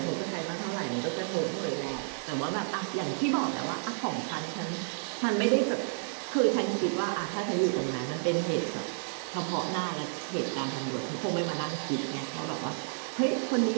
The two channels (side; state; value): left; silent; digital silence